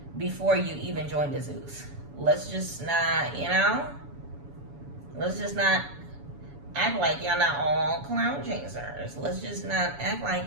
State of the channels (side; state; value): left; late; 7.1 ms